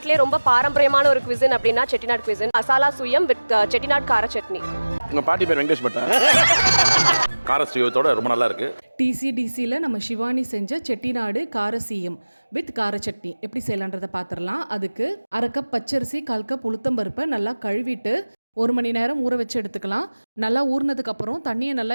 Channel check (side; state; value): both; inverted; correlation -1.00